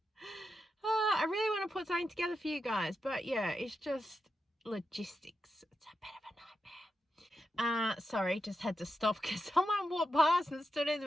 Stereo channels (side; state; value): both; normal; correlation 0.88